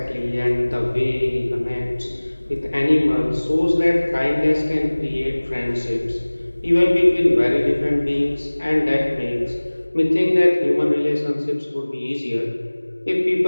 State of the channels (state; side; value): inverted; both; correlation -1.00